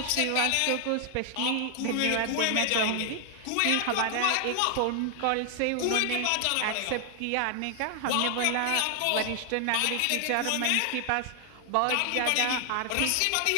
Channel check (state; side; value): different; both; correlation 0.00